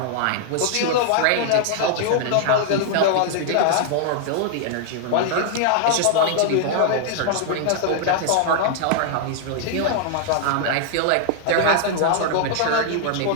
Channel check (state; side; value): different; both; correlation -0.01